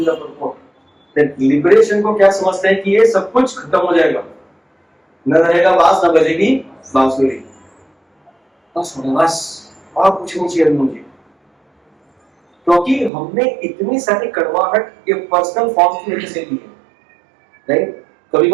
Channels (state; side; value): drops out; left; at 13.1 s